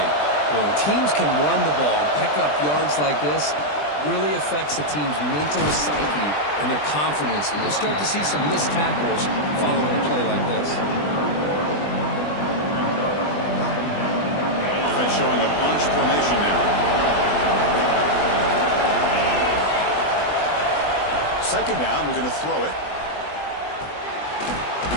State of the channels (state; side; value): late; right; 20 ms